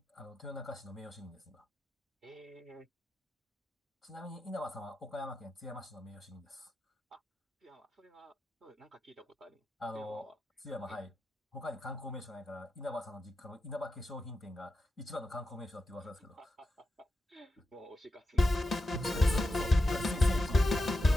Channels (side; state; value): both; normal; correlation 0.89